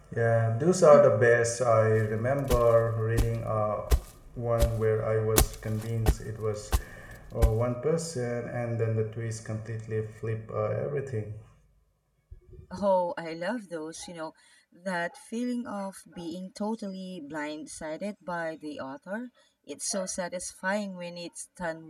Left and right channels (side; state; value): both; identical; correlation 1.00